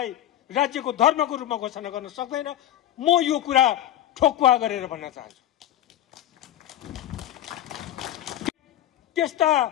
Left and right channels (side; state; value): right; quieter; 12.5 dB